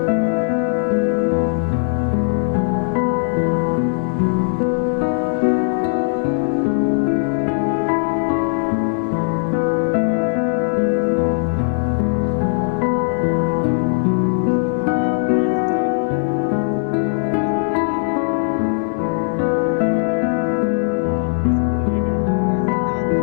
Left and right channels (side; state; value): right; silent; digital silence